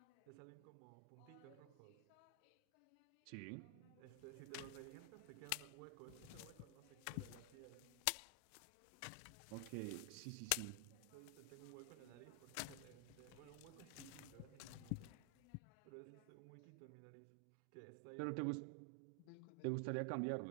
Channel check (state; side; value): different; both; correlation 0.00